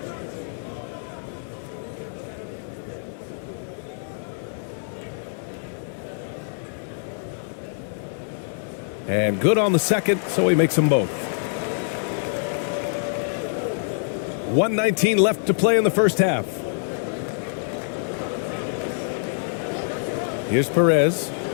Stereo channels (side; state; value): right; silent; 62 dB below the other